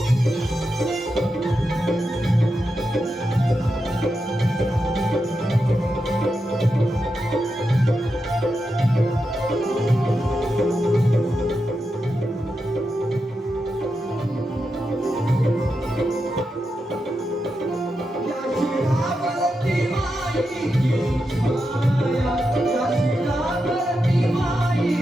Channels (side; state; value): both; normal; correlation 0.87